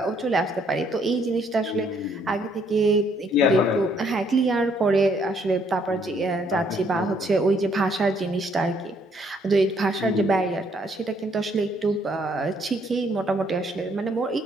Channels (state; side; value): normal; both; correlation 0.67